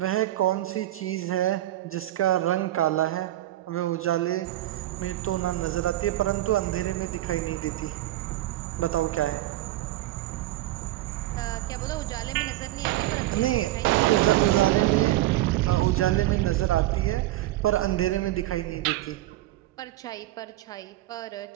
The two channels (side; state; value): left; quieter; 15.4 dB